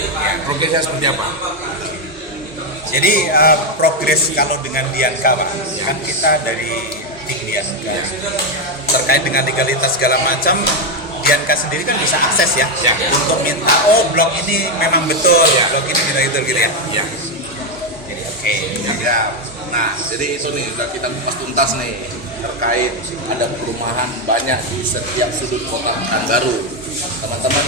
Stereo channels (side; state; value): both; normal; correlation 0.05